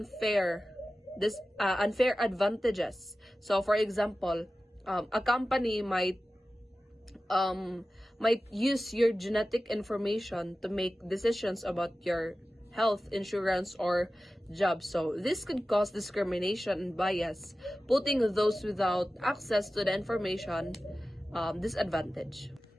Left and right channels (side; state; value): both; normal; correlation 0.95